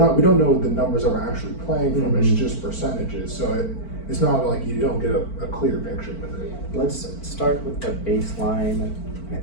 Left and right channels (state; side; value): late; right; 4.5 ms